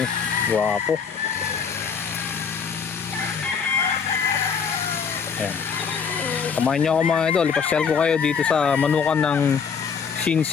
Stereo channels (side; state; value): right; quieter; 6.3 dB